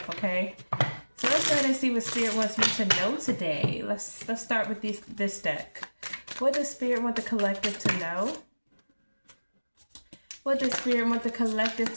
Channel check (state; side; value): inverted; both; correlation -1.00